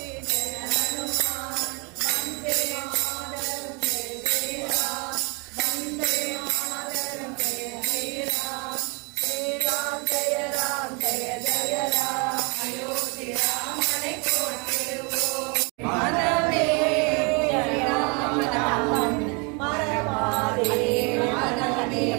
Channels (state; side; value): quieter; left; 31.9 dB